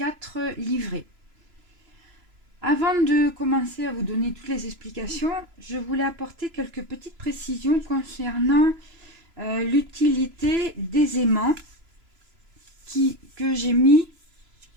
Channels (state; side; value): late; left; 3.0 ms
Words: livrets. Avant de commencer à vous donner toutes les explications, je voulais apporter quelques petites précisions concernant l'utilité des aimants que j'ai mis